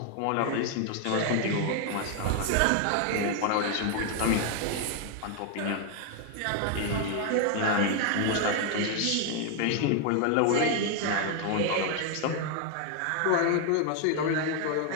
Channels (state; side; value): different; both; correlation 0.00